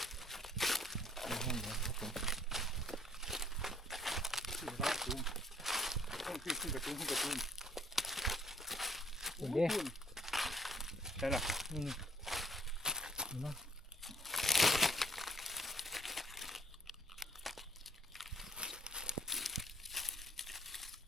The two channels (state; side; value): normal; both; correlation 0.60